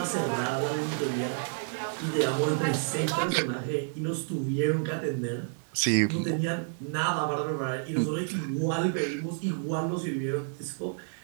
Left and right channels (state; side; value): silent; left; 58 dB below the other